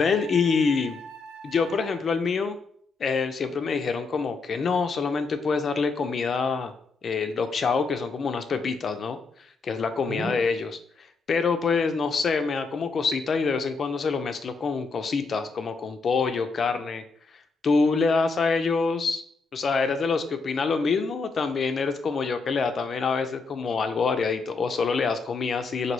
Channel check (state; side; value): quieter; right; 4.4 dB